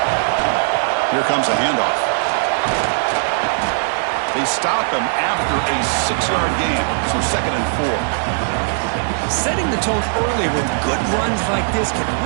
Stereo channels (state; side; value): silent; left; 67 dB below the other